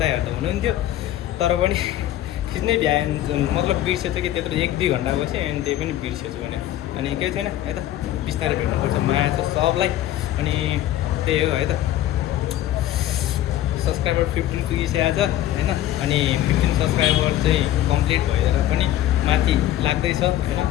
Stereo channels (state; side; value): quieter; right; 13.0 dB